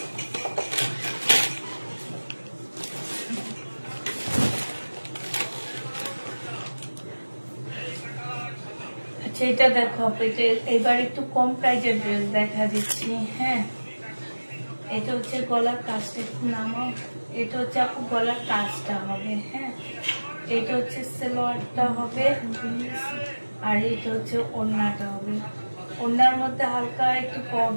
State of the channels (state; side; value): inverted; both; correlation -1.00